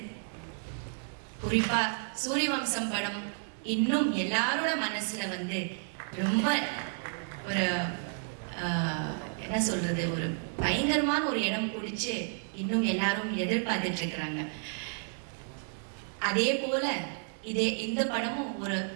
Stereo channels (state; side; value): silent; left; 57 dB below the other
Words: குறிப்பா சூரியவம்சம் படம் இன்னும் எல்லாரோட மனசுல வந்து ரொம்ப ஒரு என்ன சொல்றது, ஒரு பயங்கரமான ஒரு இடம் பிடிச்சு இன்னும் எல்லாரும் எதிர்பார்த்துட்டு இருக்கிறாங்க. அதே போல இந்த படமும் ஒரு